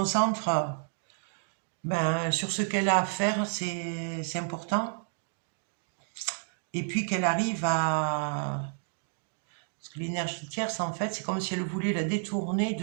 sur ce qu'elle a à faire, c'est important. Et puis qu'elle arrive à Parce que l'énergie tierce, en fait, c'est comme si elle voulait la détourner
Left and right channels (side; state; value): left; silent; digital silence